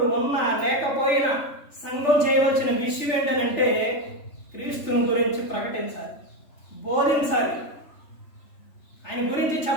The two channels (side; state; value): right; late; 3.3 ms